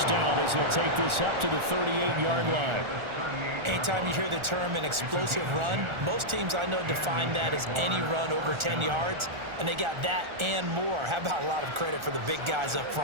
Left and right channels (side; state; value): left; late; 1.4 ms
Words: down as they'll take this up to the 38-yard line. Anytime you hear the term an explosive run, most teams I know define that as any run over 10 yards, and they got that and more. How about a lot of credit for the big guys up